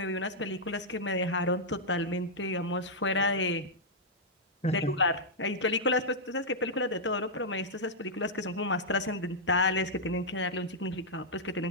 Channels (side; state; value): both; normal; correlation -0.07